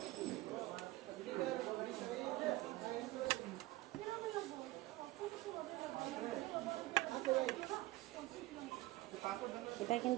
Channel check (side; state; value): left; quieter; 18.7 dB